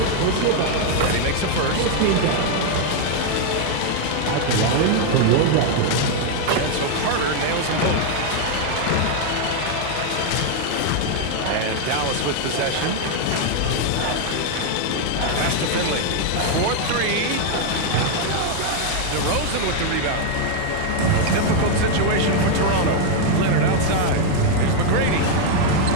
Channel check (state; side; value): different; both; correlation 0.00